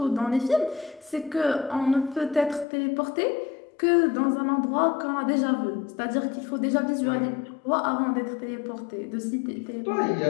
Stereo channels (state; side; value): drops out; right; at 2.7 s